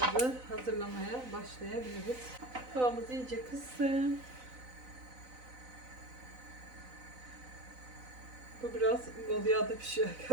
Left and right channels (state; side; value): late; left; 4.0 ms